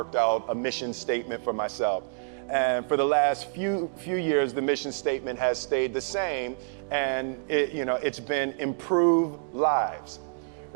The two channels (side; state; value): left; silent; digital silence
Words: out a mission statement for myself. And for the last few years, the mission statement has stayed the same, and it's been improve lives,